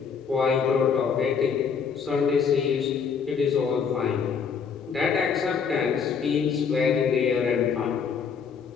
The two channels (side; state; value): right; quieter; 6.3 dB